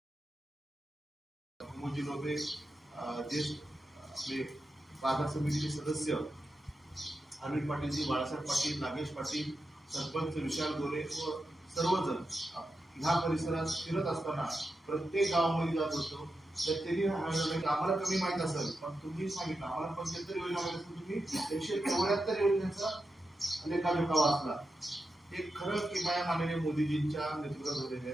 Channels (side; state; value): both; normal; correlation 0.89